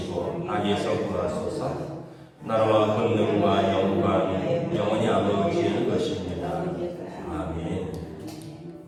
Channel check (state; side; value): identical; both; correlation 1.00